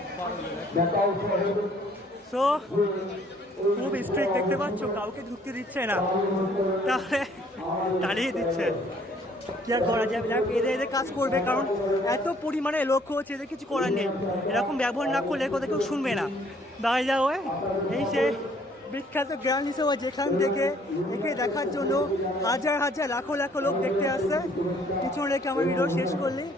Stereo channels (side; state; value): both; normal; correlation 0.61